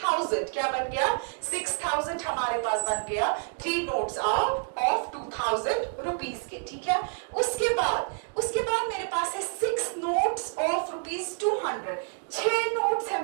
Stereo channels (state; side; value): silent; left; 59 dB below the other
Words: क्या बन गया, 6000 हमारे पास बन गया। 3 नोट्स ऑफ 2000 रुपीज के। ठीक है, उसके बाद मेरे पास है 6 नोट्स ऑफ रुपीज 200। 6 नोट्स है